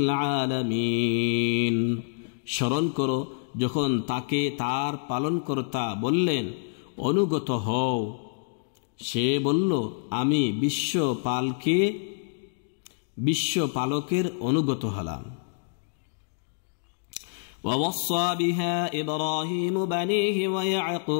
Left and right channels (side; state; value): right; silent; digital silence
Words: العالمين। স্মরণ করো যখন তাকে তার পালনকর্তা বললেন, অনুগত হও, সে বলল, আমি বিশ্বপালকের অনুগত হলাম। ووصى بها إبراهيم بنيه